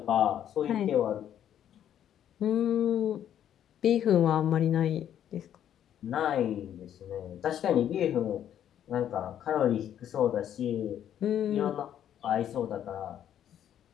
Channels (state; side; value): quieter; right; 10.3 dB